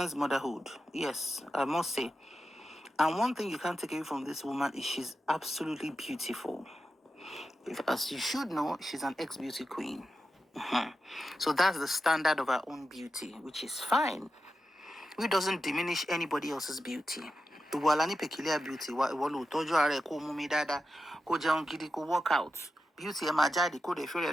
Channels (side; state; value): both; normal; correlation 0.90